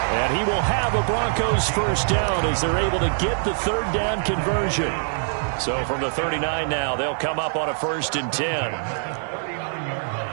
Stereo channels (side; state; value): left; silent; digital silence